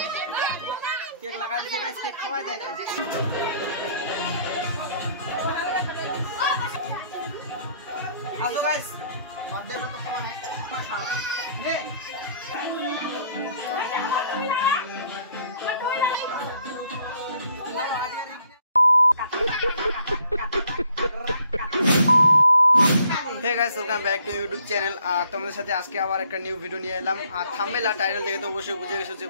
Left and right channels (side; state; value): both; inverted; correlation -0.62